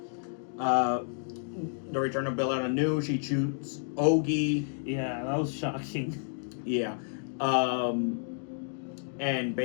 The return of Billetta Nu, she shoots Ogi. Yeah, that was shocking. Yeah. And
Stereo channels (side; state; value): right; silent; digital silence